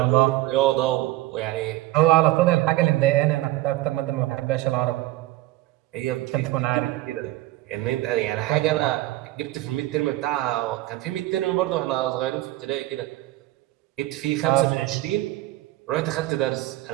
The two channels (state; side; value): quieter; left; 17.0 dB